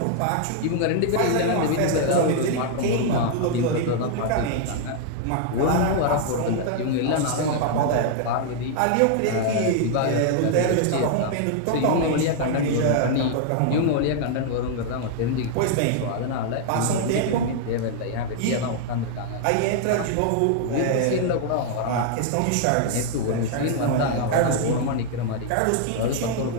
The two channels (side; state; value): both; different; correlation -0.01